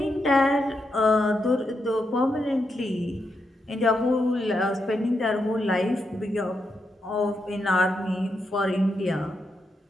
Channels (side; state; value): both; normal; correlation 0.83